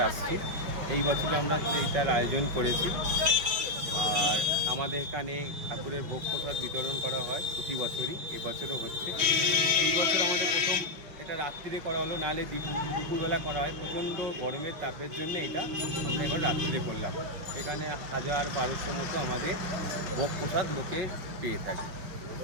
আসছি। এই বছর আমরা এইটার আয়োজন করেছি। আর আমাদের এখানে ঠাকুরের ভোগ প্রসাদ বিতরণ করা হয় প্রতি বছরই, এবছরও হচ্ছে। এই বছর আমাদের প্রথম এটা রাত্রিরে করা হলো, নাহলে দুপুরবেলা করা হয়। প্রচণ্ড গরমের তাপের জন্য এটা আমরা এবার রাত্রিরে করলাম। এখানে 1000-1200 মতো আমাদের ভোগ প্রসাদ লোকে পেয়ে থাকে।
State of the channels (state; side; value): late; left; 5.8 ms